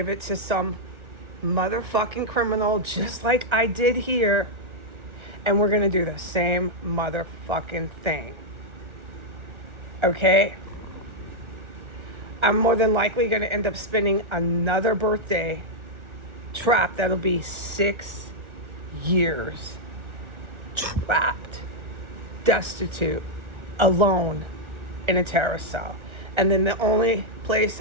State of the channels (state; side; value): late; left; 1.4 ms